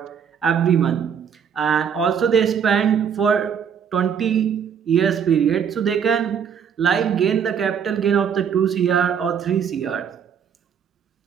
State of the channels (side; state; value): left; quieter; 7.6 dB